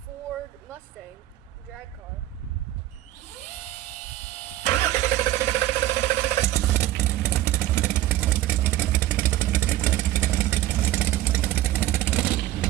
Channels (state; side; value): quieter; left; 14.4 dB